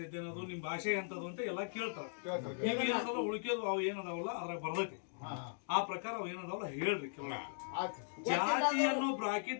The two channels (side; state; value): right; silent; digital silence